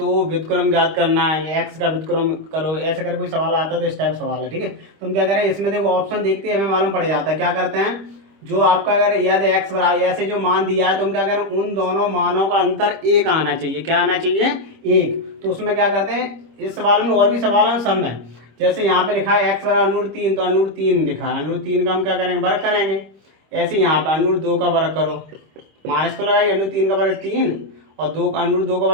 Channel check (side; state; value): left; late; 26 ms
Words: व्युत्क्रम ज्ञात करना है, एक्स का व्युत्क्रम करो, ऐसे कर कोई सवाल आता है तो इस टाइप सवाल है, ठीक है। तो हम क्या करें, इसमें देखो ऑप्शन देखते हैं, हमें मालूम पड़ जाता है। क्या करते हैं, जो आपका अगर याद एक्स बराबर ऐसे जो मान दिया है तो हम क्या करें, उन दोनों मानों का अंतर एक आना चाहिए। क्या आना चाहिए, एक। तो उसमें क्या करते हैं, इस सवाल में और भी सवाल हैं सब में। जैसे यहाँ पे लिखा है एक्स बराबर √3 तो √3 लिखा है, √3 का हम क्या करेंगे, वर्ग करेंगे। ऐसे यहाँ पे √2 का वर्ग करो, माइनस तो लगाइए, √3 का वर्ग 3 और √2 का